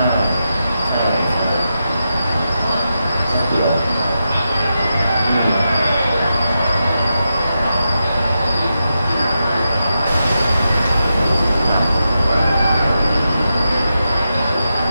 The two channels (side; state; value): both; inverted; correlation -0.88